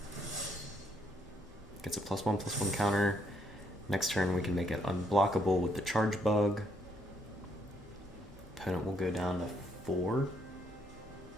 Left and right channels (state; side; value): normal; both; correlation 0.72